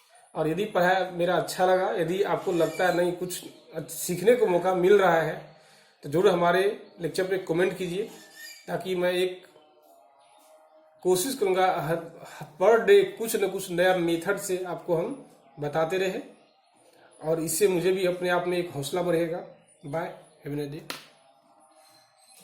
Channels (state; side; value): identical; both; correlation 1.00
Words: और यदि पढ़ाई मेरा अच्छा लगा, यदि आपको लगता है नहीं कुछ सीखने को मौका मिल रहा है, तो जरूर हमारे लेक्चर पे कमेंट कीजिए, ताकि मैं एक कोशिश करूंगा पर डे कुछ न कुछ नया मेथड से आपको हम बताते रहे, और इससे मुझे भी अपने आप में एक हौसला बढ़ेगा। Bye, have a nice day.